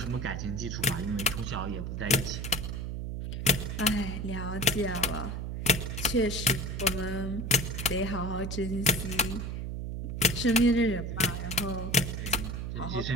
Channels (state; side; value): noise; right; hum, 4 dB below the sound